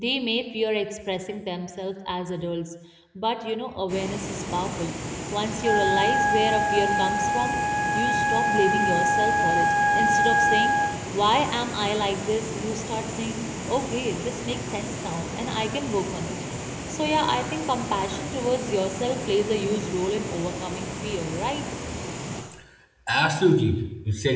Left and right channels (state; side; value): identical; both; correlation 1.00